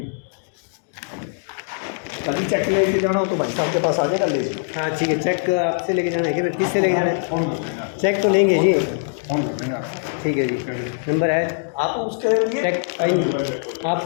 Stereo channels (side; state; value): right; silent; digital silence